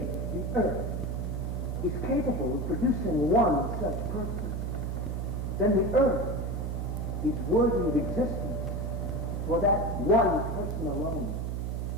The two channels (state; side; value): noise; right; hum, 2 dB below the sound